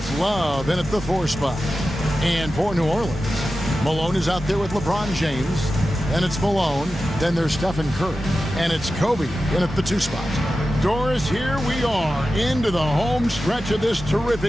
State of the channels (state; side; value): normal; both; correlation 0.93